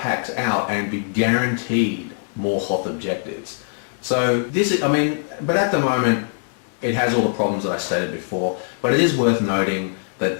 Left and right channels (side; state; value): right; silent; digital silence